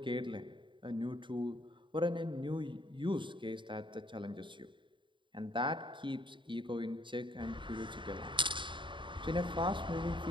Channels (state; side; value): late; left; 0.23 ms